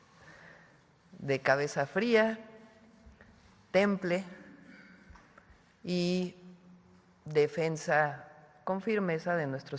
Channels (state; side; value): identical; both; correlation 1.00